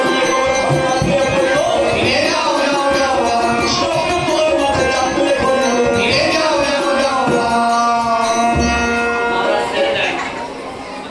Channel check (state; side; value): identical; both; correlation 1.00